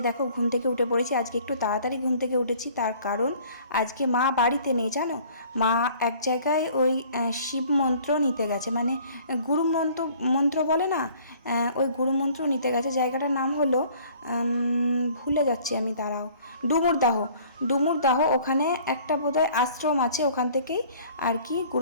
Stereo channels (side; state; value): both; inverted; correlation -0.53